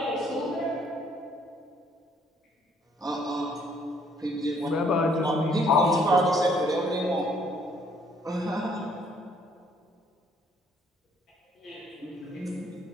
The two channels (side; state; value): both; normal; correlation 0.64